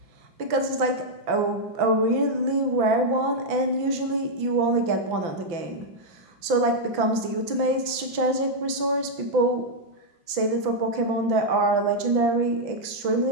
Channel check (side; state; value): left; late; 5.9 ms